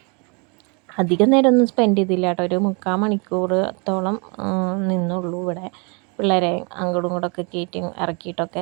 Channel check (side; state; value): left; quieter; 33.1 dB